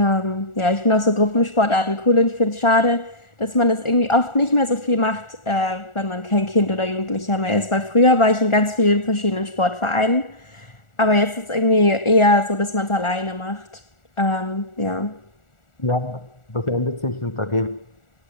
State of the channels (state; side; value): late; right; 1.4 ms